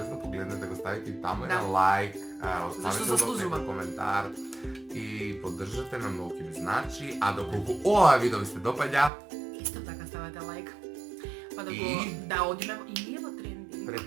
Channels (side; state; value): left; drops out; at 9.1 s